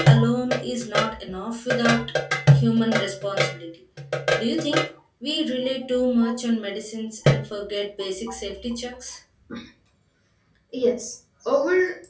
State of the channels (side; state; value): both; identical; correlation 1.00